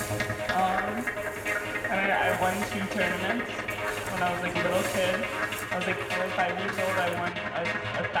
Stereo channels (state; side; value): identical; both; correlation 1.00